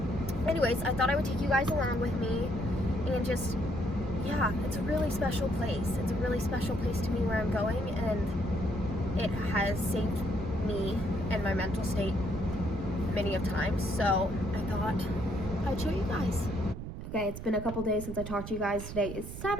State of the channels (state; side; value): noise; right; rumble, 8 dB below the sound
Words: Anyways, I thought I would take you guys along with me, and just, yeah, it's a really special place. It's a really special place to me where I'm going, and it has saved me and my mental state many of times, so I thought I'd show you guys. Okay, it's been a couple days since I talked to you guys. Today is